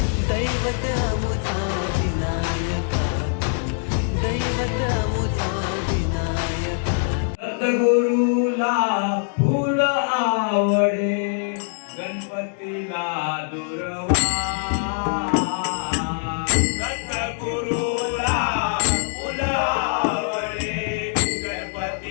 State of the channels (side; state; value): right; silent; 63 dB below the other